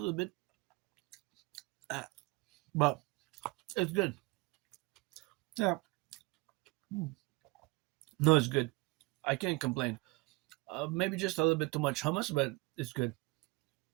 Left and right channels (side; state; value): left; quieter; 24.6 dB